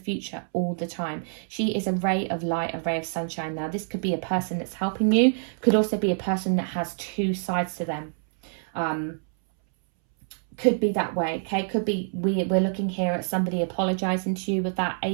all the time. She is a ray of light, a ray of sunshine. Now, this could be a person that's helping you, could also be a person that has two sides to them. Could be that way, okay? Could be we're looking here at somebody apologizing to you with that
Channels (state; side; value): silent; left; 61 dB below the other